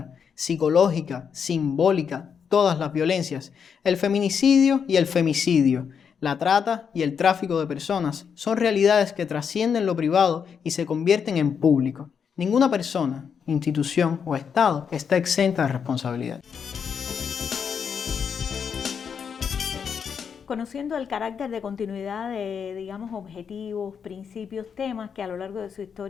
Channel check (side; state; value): right; quieter; 6.9 dB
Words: psicológica, simbólica, todas las violencias, el feminicidio y el femicidio, la trata y el tráfico de personas son realidades que trascienden lo privado y se convierten en público. Ninguna persona, institución o Estado está exenta de responsabilidad. Conociendo el carácter de continuidad de, digamos, objetivos, principios, temas que a lo largo de su